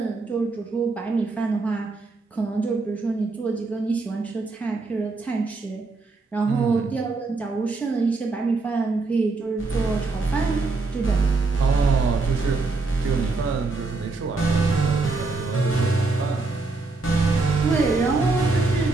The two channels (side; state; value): left; quieter; 3.7 dB